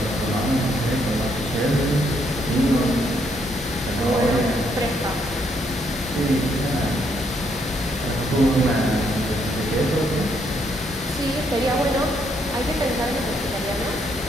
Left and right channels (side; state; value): both; normal; correlation 0.73